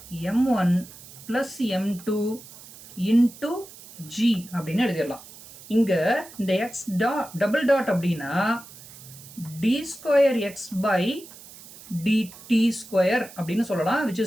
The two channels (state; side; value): noise; right; hiss, 18 dB below the sound